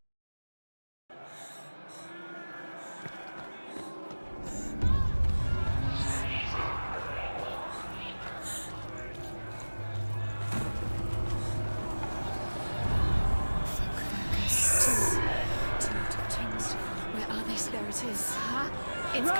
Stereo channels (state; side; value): inverted; both; correlation -1.00